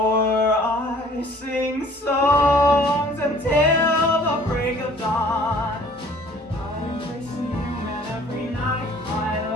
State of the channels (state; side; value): normal; both; correlation 0.53